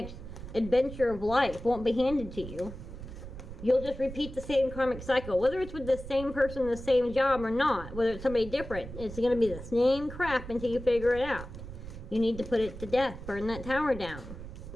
adventure of life won't be handed to you. You'll just repeat the same karmic cycle, whether it's with the same person, the same job, or not. Whether it's somebody different, it's going to be the same crap until you figure it out. You need to put it to death. Burn that tower down.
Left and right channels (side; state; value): right; noise; rumble, 11 dB below the sound